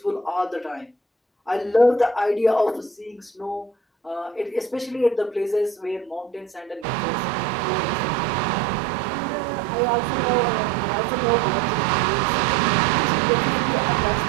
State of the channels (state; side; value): drops out; left; at 6.9 s